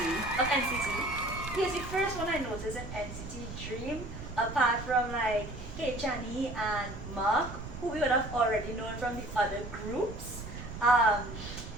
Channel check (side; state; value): right; noise; rumble, 11 dB below the sound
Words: of NCT. He was the first one I noticed in NCT Dream, apart from like Hey Chani and Mark, who we would have already known from the other groups.